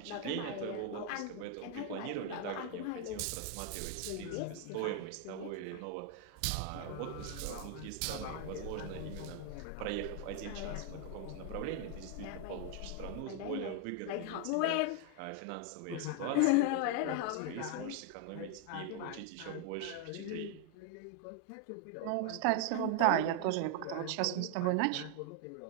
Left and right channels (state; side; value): different; both; correlation 0.00